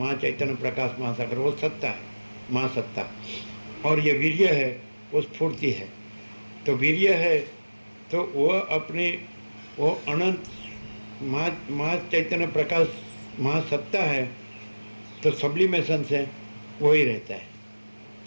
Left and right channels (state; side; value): inverted; both; correlation -1.00